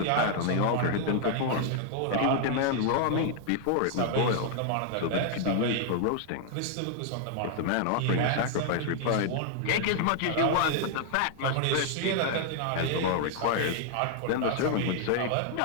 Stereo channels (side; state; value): both; different; correlation 0.00